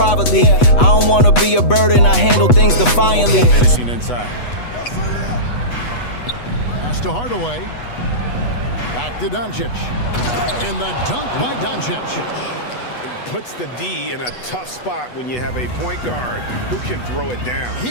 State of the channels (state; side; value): late; right; 8.2 ms